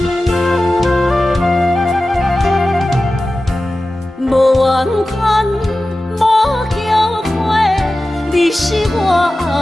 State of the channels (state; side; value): normal; both; correlation 0.95